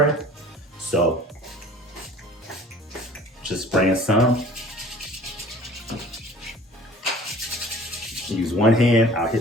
So just spraying some. Use one hand, I'll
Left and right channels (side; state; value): both; normal; correlation 0.47